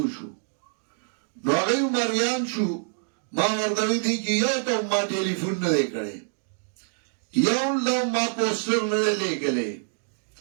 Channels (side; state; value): left; silent; digital silence